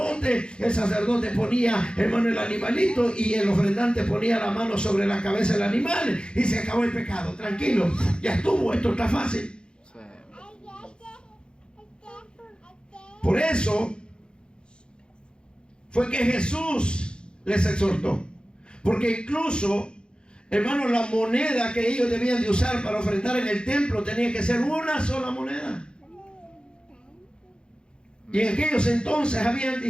El sacerdote ponía, hermano, el animalito y el ofrendante ponía la mano sobre la cabeza del animal y se acabó el pecado. Tranquilo, ya estuvo, esto está fácil. Sí. Por eso fue que Jesús les exhortó. Porque incluso, hermanos, la moneda que ellos debían de usar para ofrendar en el templo tenía que ser una sola moneda. Y en aquellos entonces habían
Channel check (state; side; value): late; right; 0.052 ms